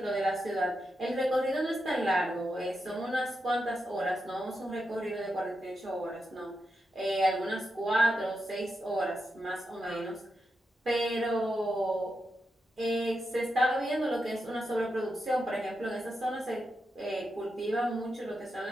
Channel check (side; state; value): both; normal; correlation 0.87